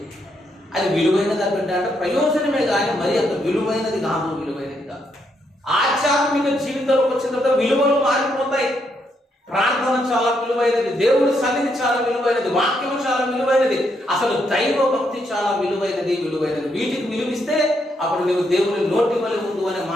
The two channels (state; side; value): normal; both; correlation 0.77